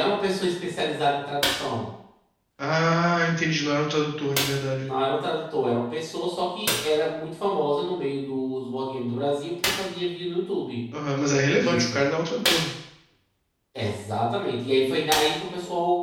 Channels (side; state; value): both; identical; correlation 1.00